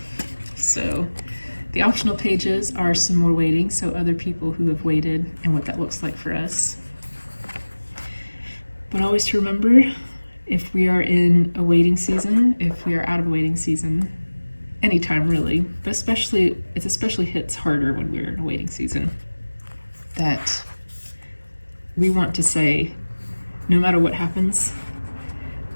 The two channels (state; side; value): inverted; both; correlation -1.00